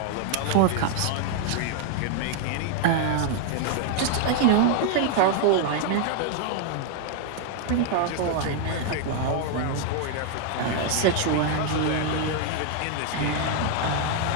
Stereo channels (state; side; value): different; both; correlation 0.00